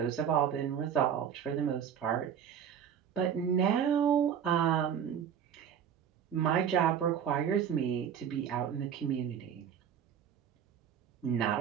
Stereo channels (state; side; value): quieter; left; 8.5 dB